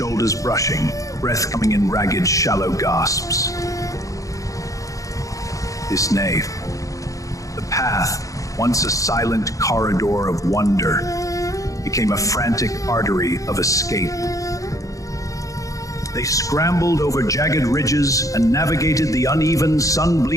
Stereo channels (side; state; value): right; late; 0.16 ms